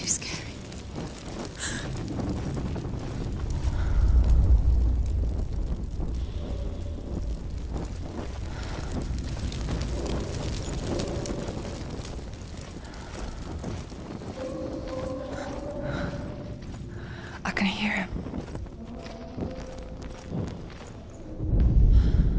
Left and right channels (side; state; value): both; identical; correlation 1.00